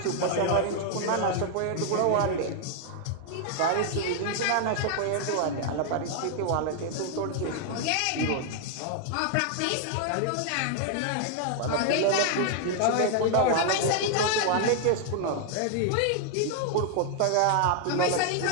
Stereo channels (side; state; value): both; different; correlation 0.00